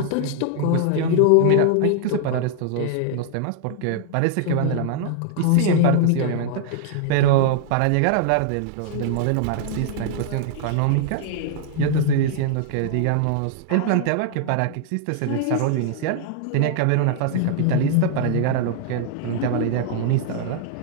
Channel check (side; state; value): both; different; correlation -0.01